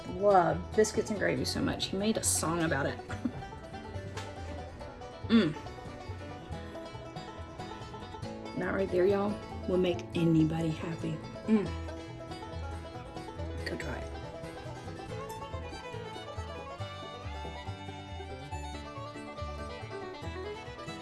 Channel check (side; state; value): both; identical; correlation 1.00